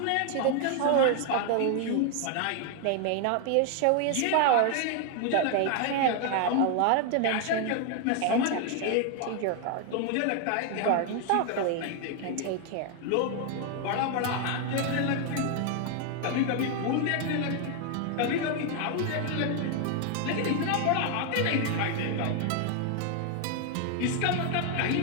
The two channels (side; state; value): both; different; correlation 0.00